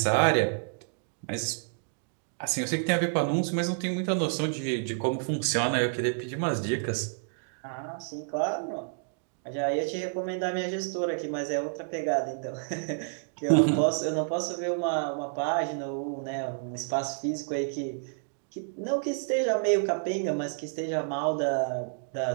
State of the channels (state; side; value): silent; left; digital silence